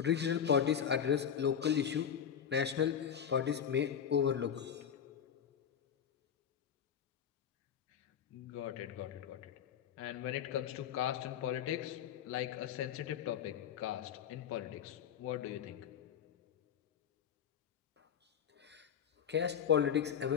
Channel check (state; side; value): quieter; right; 8.4 dB